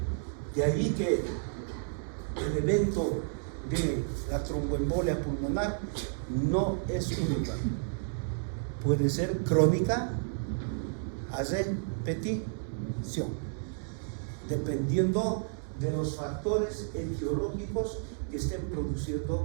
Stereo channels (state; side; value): silent; left; digital silence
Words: De ahí que el evento de la tromboembolia pulmonar no es única. Puede ser crónica a repetición, dependiendo de los factores etiológicos que estén